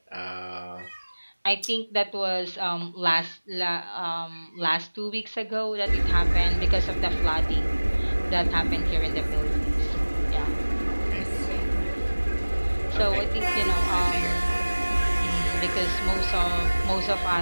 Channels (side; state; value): both; inverted; correlation -1.00